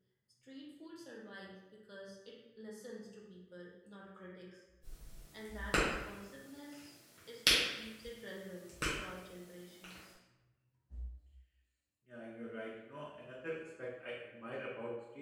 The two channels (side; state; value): both; identical; correlation 1.00